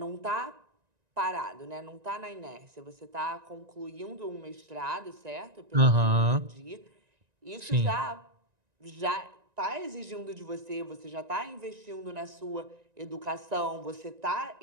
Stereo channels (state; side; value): late; left; 1.9 ms